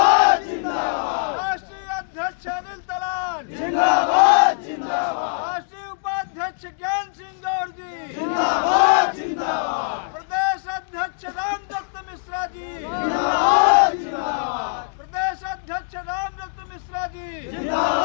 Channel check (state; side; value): silent; right; digital silence